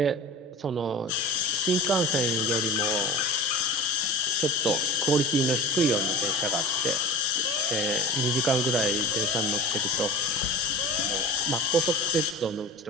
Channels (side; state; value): both; normal; correlation 0.35